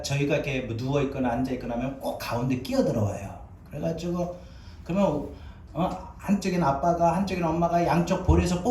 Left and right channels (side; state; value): both; identical; correlation 1.00